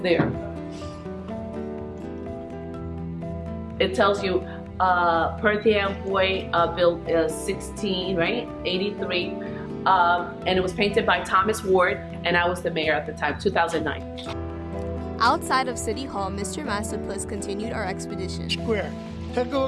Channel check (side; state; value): both; identical; correlation 1.00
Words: It tells you Perth Amboy built 16, right? 83. And it was painted by Thomas Ward, and I was the mayor at the time, 2009. Outside of City Hall, Mr. Masterplus continued our expedition. Square. Take a